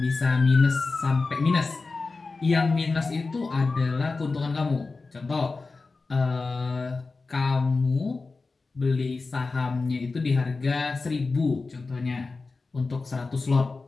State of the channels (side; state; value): right; quieter; 3.9 dB